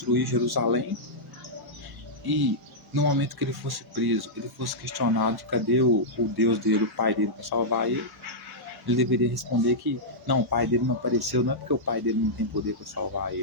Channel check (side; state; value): both; normal; correlation -0.10